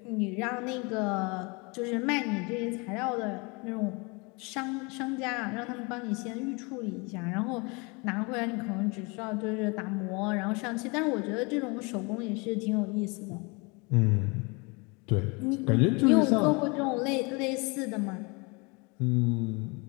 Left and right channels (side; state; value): right; quieter; 29.0 dB